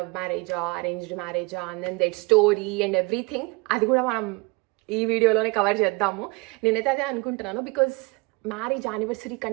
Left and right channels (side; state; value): left; quieter; 27.2 dB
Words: మ్యారేజా అరేంజ్డ్ మ్యారేజా and then that story and everything, అది కూడా మనం ఈ వీడియోలోనే కవర్ చేద్దాము. నేనైతే అదే అనుకుంటున్నాను, బికాజ్ మ్యారేజ్ యానివర్సరీ